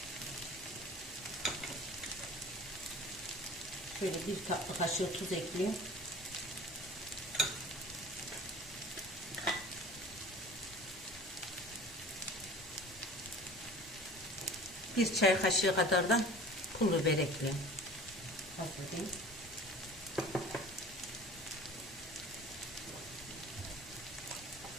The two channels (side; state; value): both; normal; correlation 0.42